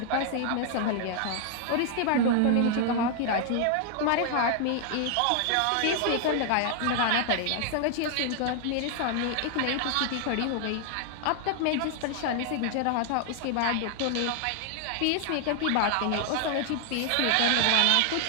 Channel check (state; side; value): different; both; correlation 0.00